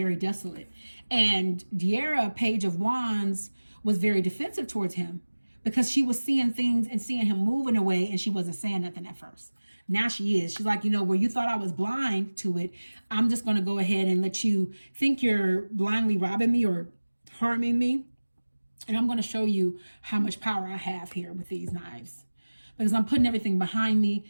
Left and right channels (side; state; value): both; inverted; correlation -1.00